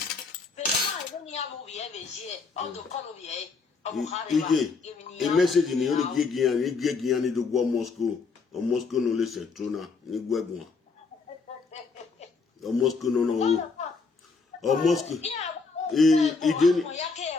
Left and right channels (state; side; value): quieter; right; 4.5 dB